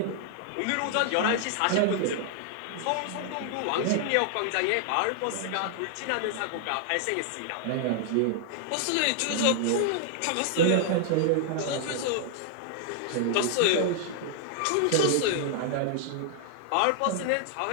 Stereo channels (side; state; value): both; different; correlation 0.00